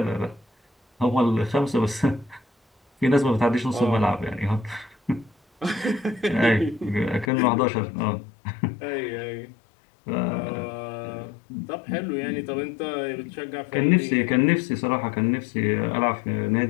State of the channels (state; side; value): drops out; right; at 7.3 s